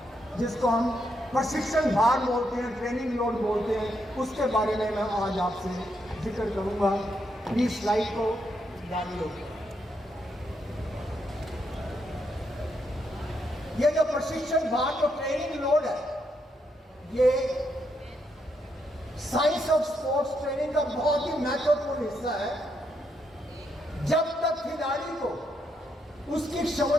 जिसको हम प्रशिक्षण भार बोलते हैं, ट्रेनिंग लोड बोलते हैं, उसके बारे में मैं आज आपसे जिक्र करूंगा। प्लीज स्लाइड को डाल लो। ये जो प्रशिक्षण भार जो ट्रेनिंग लोड है, ये साइंस ऑफ स्पोर्ट्स ट्रेनिंग का बहुत ही महत्वपूर्ण हिस्सा है। जब तक खिलाड़ी को उसकी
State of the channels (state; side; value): normal; both; correlation 0.79